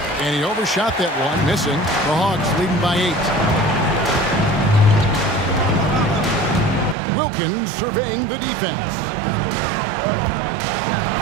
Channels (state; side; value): drops out; left; at 7.0 s